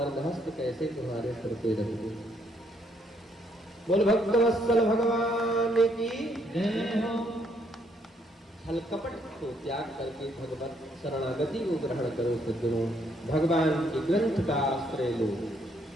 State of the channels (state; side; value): normal; both; correlation 0.70